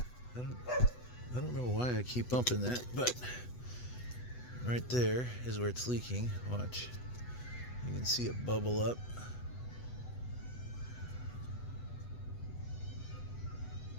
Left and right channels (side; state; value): right; late; 8.1 ms